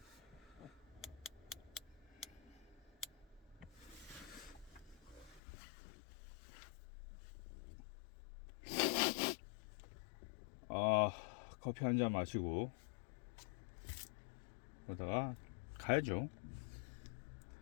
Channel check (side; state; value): right; drops out; at 5.4 s